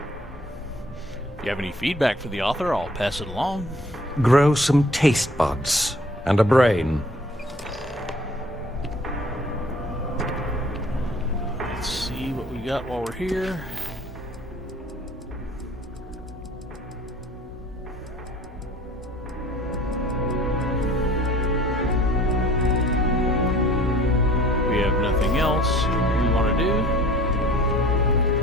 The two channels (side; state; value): both; normal; correlation 0.52